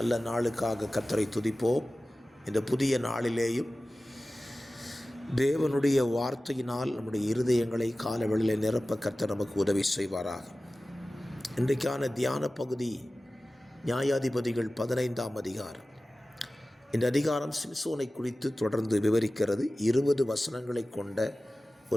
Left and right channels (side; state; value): both; normal; correlation 0.96